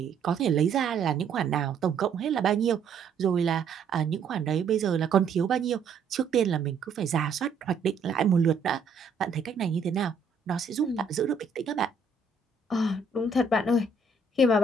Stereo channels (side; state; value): left; quieter; 4.5 dB